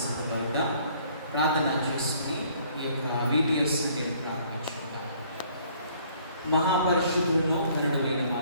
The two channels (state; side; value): inverted; both; correlation -0.60